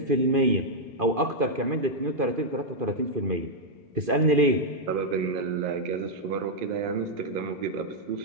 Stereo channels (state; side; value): late; left; 2.5 ms